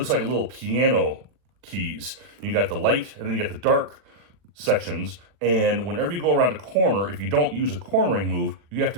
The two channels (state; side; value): late; left; 40 ms